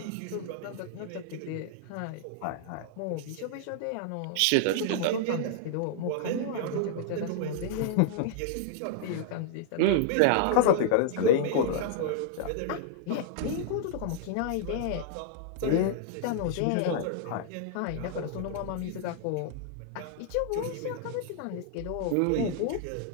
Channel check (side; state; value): both; different; correlation -0.01